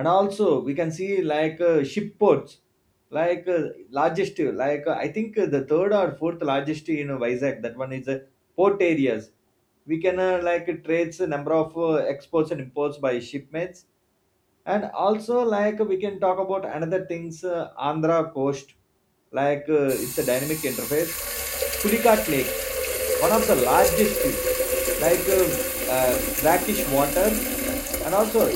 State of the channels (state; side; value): identical; both; correlation 1.00